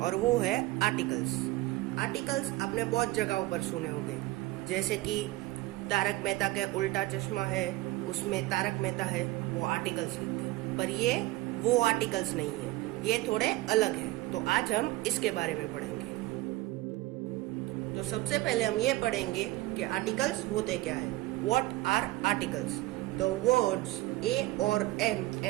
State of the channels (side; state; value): left; quieter; 18.5 dB